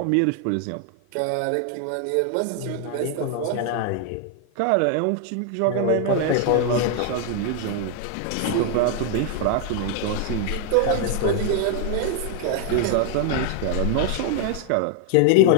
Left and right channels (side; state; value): both; different; correlation 0.00